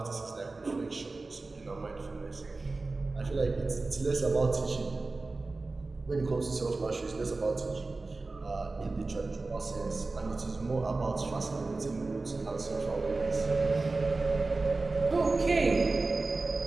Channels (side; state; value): left; quieter; 3.5 dB